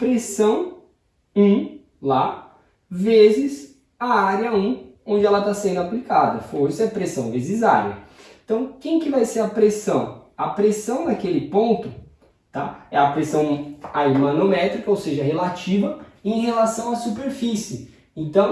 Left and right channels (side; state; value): both; identical; correlation 1.00